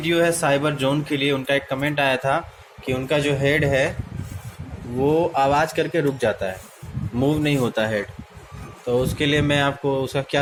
है साइबर जोन के लिए। उनका एक कमेंट आया था कि उनका जो हेड है वो आवाज़ करके रुक जाता है, मूव नहीं होता हेड। तो उसके लिए मैं आपको उसका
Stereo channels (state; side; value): identical; both; correlation 1.00